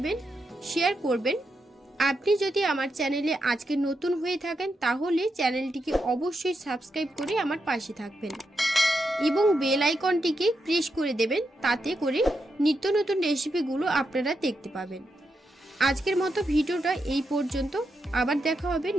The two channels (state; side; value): normal; both; correlation 0.84